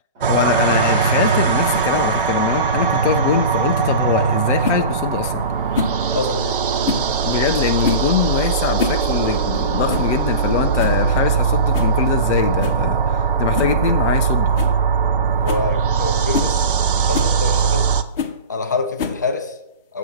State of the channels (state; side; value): inverted; both; correlation -0.32